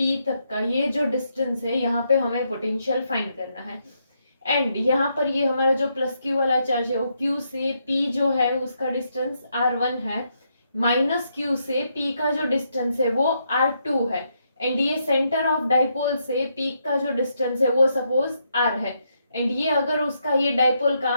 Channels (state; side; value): inverted; both; correlation -0.78